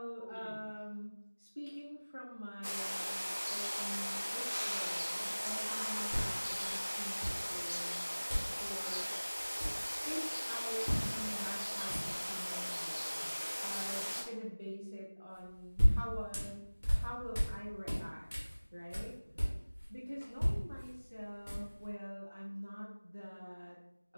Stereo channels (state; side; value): inverted; both; correlation -1.00